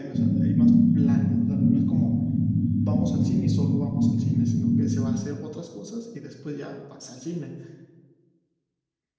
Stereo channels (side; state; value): both; identical; correlation 1.00